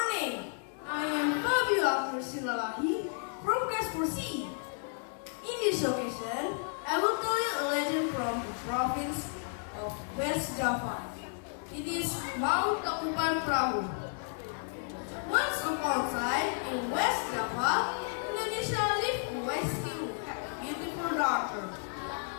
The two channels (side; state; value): right; silent; 56 dB below the other